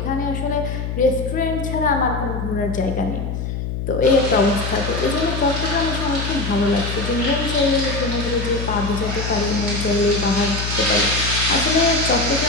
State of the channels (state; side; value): noise; left; hum, 4 dB below the sound